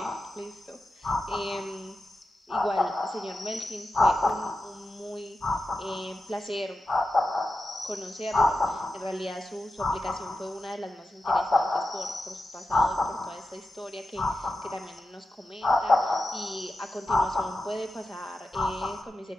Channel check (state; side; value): normal; both; correlation 0.91